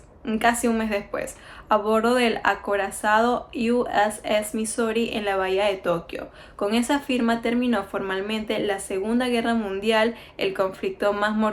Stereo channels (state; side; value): identical; both; correlation 1.00